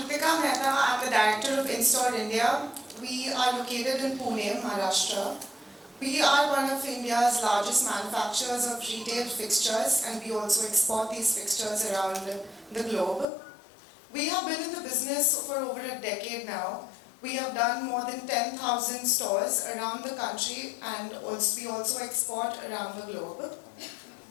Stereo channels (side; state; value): right; drops out; at 13.2 s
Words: Mehta. I'm the director of InStore India. We are located in Pune, Maharashtra. We are one of India's largest manufacturers of retail fixtures, and we also export these fixtures around the globe. We have been in the business for over a decade now. We have done more than 10,000 stores around the country, and we also export around the globe.